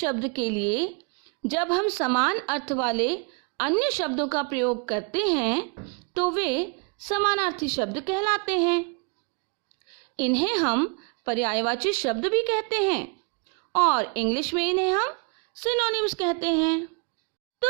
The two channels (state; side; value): quieter; left; 36.0 dB